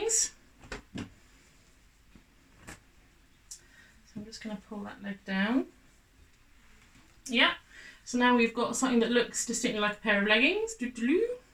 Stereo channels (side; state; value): both; identical; correlation 1.00